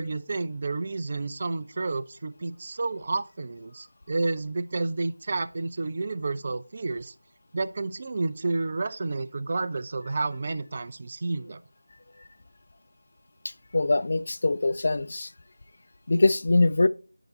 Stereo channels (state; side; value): inverted; both; correlation -0.95